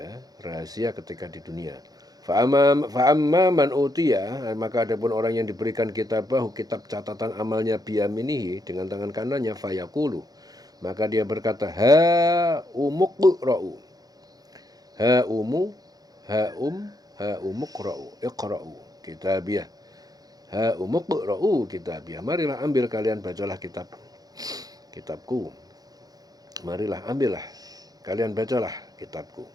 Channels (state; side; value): late; left; 0.18 ms